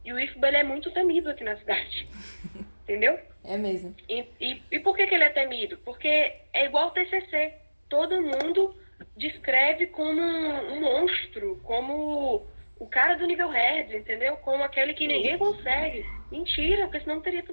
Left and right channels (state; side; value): inverted; both; correlation -1.00